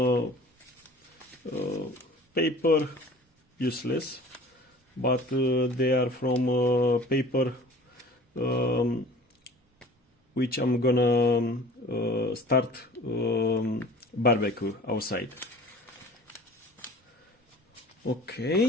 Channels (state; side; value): normal; both; correlation 0.44